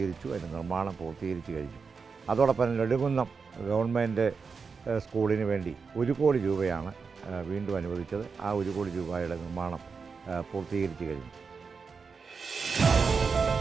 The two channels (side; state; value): left; quieter; 5.2 dB